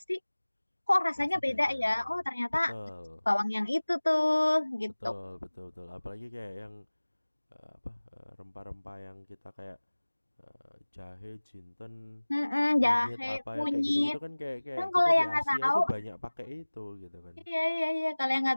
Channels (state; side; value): inverted; both; correlation -1.00